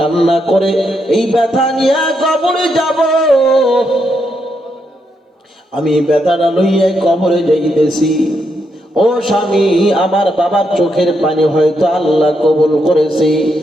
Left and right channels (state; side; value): normal; both; correlation 0.80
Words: করে এই ব্যথা নিয়ে কবরে যাব, আমি ব্যথাটা লইয়া কবরে যাইতেছি। ও স্বামী, আমার বাবার চোখের পানি হয়তো আল্লাহ কবুল করেছে।